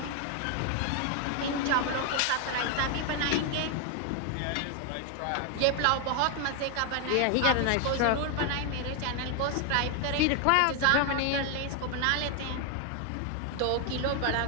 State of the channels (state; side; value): different; both; correlation 0.01